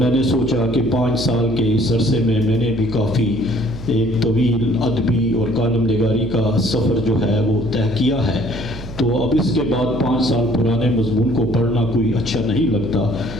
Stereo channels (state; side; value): noise; right; hum, 12 dB below the sound